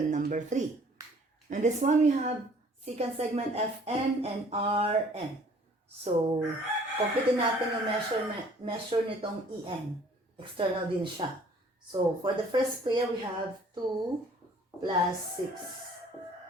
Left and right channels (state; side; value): normal; both; correlation 0.55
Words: number 3. And this one we have secant segment FN and RN. So, compute natin yung measure nitong EN. External din siya. So, for the first pair, we have 2 plus 6.